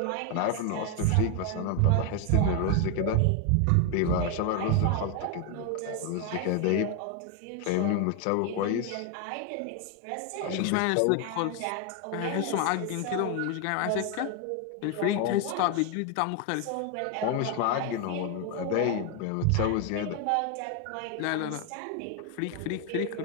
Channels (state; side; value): different; both; correlation 0.01